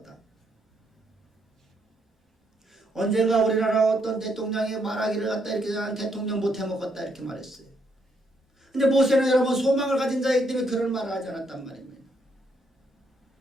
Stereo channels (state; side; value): normal; both; correlation 0.75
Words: 언젠가 우리나라 어떤 대통령이 말하기를 갖다 이렇게 나는 대통령 못해먹었다 이렇게 말했어요. 근데 모세는 여러분 소망을 가진 자이기 때문에 그런 말을 하지 않았단 말입니다.